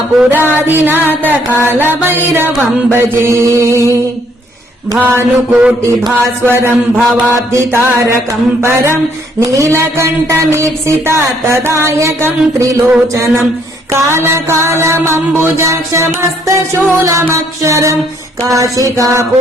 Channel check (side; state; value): both; normal; correlation 0.67